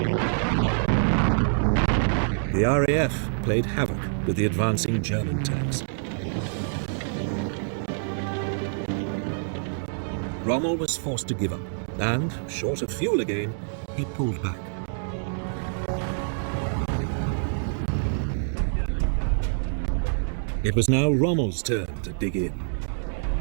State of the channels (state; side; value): silent; left; digital silence